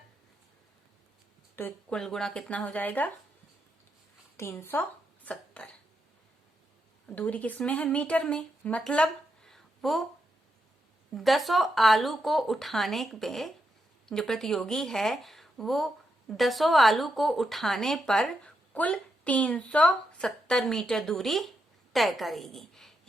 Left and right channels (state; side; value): normal; both; correlation 0.83